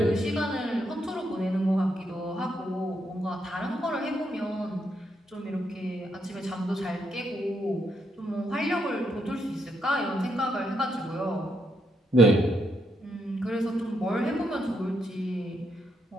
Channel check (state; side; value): normal; both; correlation 0.78